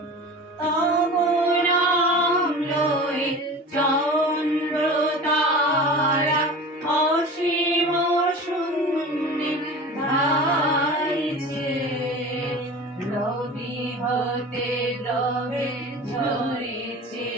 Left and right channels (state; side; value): normal; both; correlation 0.35